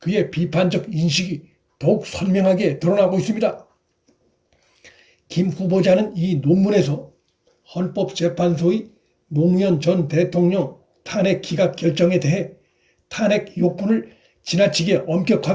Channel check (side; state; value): both; identical; correlation 1.00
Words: 그의 비판적 인식이 더욱 선명하게 드러나고 있습니다. 김 후보자는 이 논문에서 헌법재판소의 노무현 전 대통령 탄핵 기각 결정에 대해 탄핵 요건을 지나치게